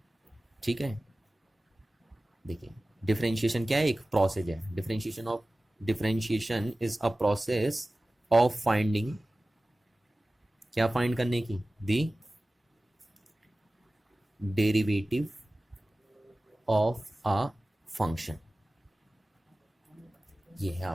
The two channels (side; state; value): both; normal; correlation 0.97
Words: ठीक है, देखिए डिफरेंशिएशन क्या है? एक प्रोसेस है। Differentiation is a process of finding, क्या फाइंड करने की? दी डेरिवेटिव ऑफ अ फंक्शन। ये है